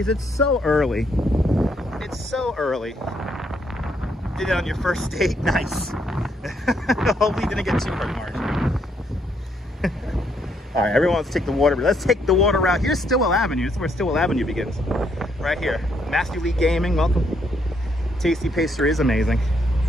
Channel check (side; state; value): both; normal; correlation 0.73